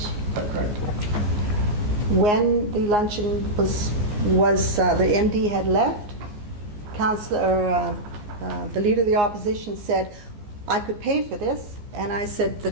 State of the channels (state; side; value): late; left; 14 ms